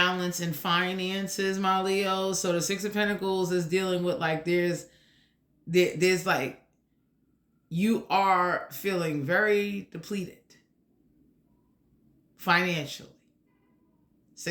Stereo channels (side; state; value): both; identical; correlation 1.00